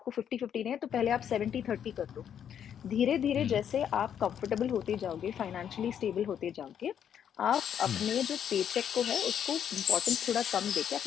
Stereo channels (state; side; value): quieter; right; 8.9 dB